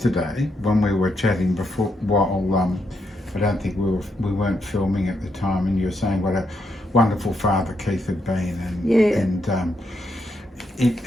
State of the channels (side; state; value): both; normal; correlation 0.79